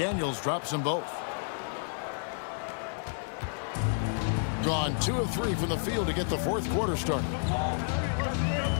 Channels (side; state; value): right; silent; digital silence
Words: drops them both. Gone 2 of 3 from the field to get the fourth quarter started.